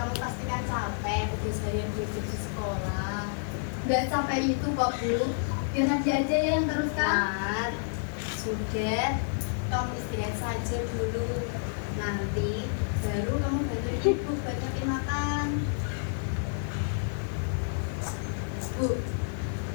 pasti kan capek habis harian belajar di sekolah. Nggak capek itu kok, Bu. Biar nanti aja yang teruskan. Nah, sudah. Kamu istirahat saja dulu. Nanti baru kamu bantu ibu buat nyiapin makan. Bu,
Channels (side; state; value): right; silent; 58 dB below the other